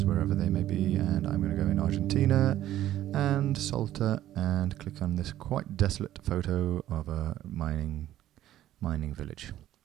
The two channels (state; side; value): quieter; left; 13.1 dB